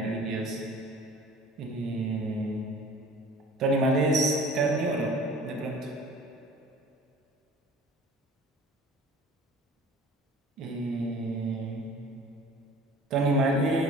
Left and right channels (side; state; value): both; normal; correlation 0.46